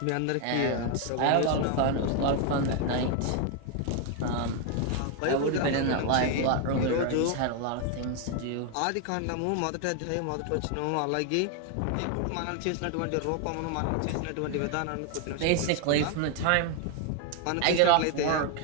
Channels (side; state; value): both; different; correlation 0.01